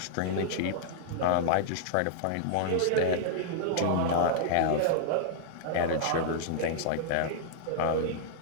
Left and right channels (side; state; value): both; different; correlation -0.01